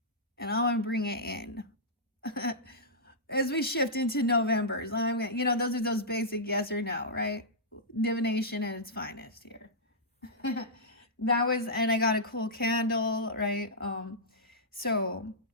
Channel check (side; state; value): both; normal; correlation -0.13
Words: And I'm going to bring it in. As we shift into November's, those are those basic yes or no, right? Divination at its finest here. And I got a cool candle, right? So